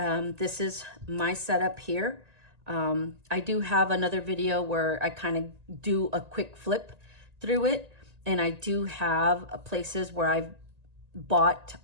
this is my setup here. I do have another video where I kind of do a quick flip through it, and I do have places where I've bought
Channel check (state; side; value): late; left; 1.8 ms